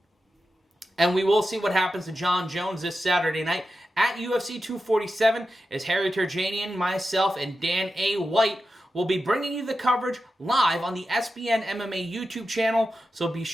And we will see what happens to Jon Jones this Saturday night at UFC 247 as Harry Terjanian, myself, and Dan A. White will be bringing you the coverage live on the SBN MMA YouTube channel, so be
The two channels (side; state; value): both; normal; correlation 0.91